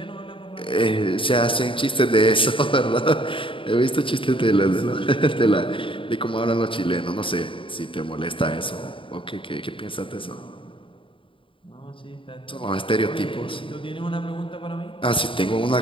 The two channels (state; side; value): late; right; 0.25 ms